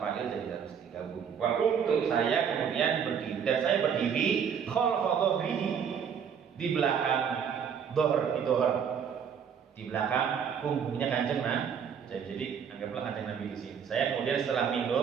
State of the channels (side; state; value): left; quieter; 7.4 dB